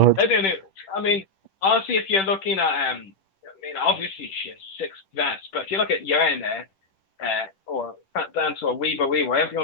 They didn't. I mean, honestly, if you're looking at, I mean, obviously she has 6 vests, but if you look at Yerna, or Fat Dancer or Weaver Weaver, whatever you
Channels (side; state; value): right; late; 10 ms